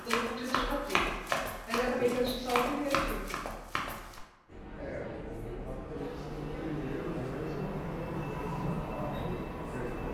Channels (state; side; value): identical; both; correlation 1.00